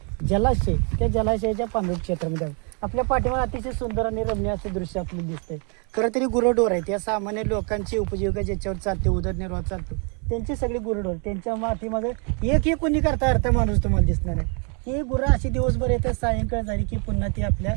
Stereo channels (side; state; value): left; quieter; 37.8 dB